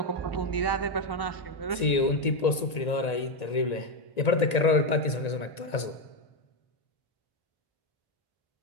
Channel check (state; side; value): late; right; 1.9 ms